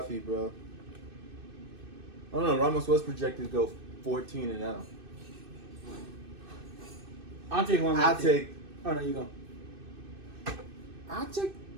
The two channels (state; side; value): late; left; 2.6 ms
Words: bro. I don't know. Ramos was projected to go 14-0. I'll take one. I'll take. Oh, no, you go. I'll take